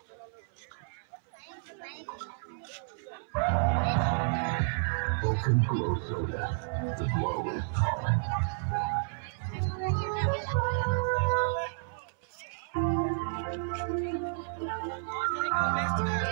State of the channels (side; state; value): left; silent; 57 dB below the other